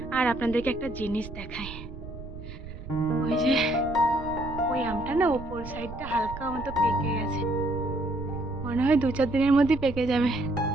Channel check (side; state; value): right; noise; rumble, 12 dB below the sound